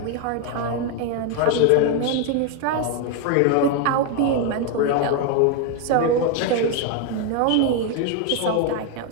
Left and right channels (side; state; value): both; different; correlation 0.01